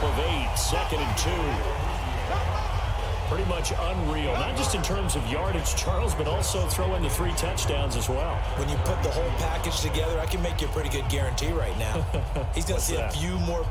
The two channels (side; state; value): both; identical; correlation 1.00